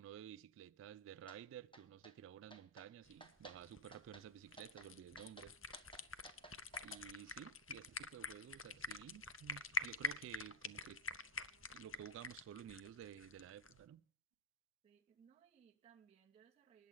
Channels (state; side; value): normal; both; correlation -0.16